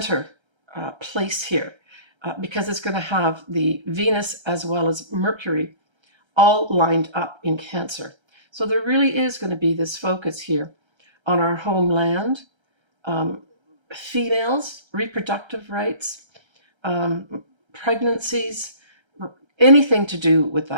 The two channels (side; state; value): left; late; 1.3 ms